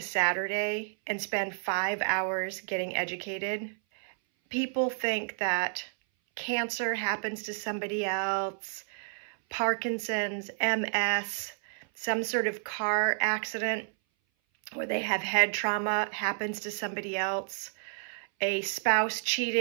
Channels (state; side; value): silent; left; 57 dB below the other